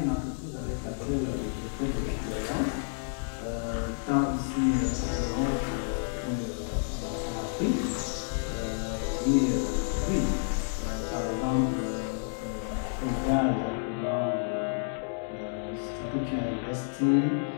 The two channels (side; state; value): right; silent; digital silence